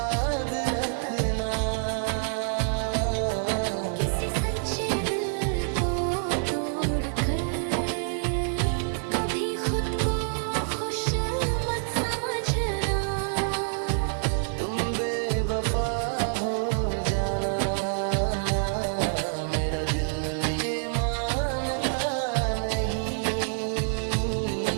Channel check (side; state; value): left; silent; 60 dB below the other